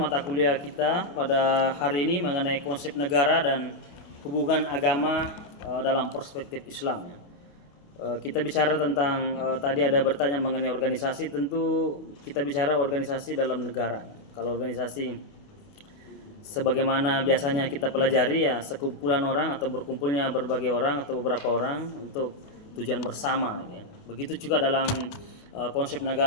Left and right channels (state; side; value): late; right; 28 ms